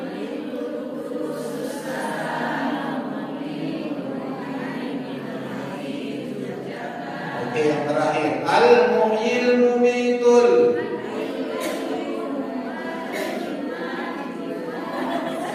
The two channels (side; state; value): both; identical; correlation 1.00